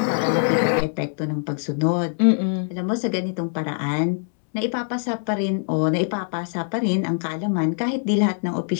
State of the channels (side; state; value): right; silent; 61 dB below the other